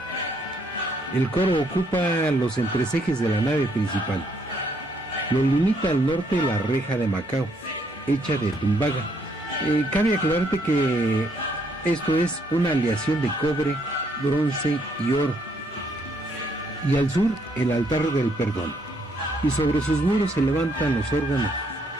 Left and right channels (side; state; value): both; normal; correlation 0.70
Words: El coro ocupa los entrecejes de la nave principal. Lo limita al norte la reja de Macao, hecha de tumbaga. Cabe aclararte que esto es una aleación de cobre, bronce y oro. Y al sur, el altar del perdón. Y sobre sus muros se levantan los órganos,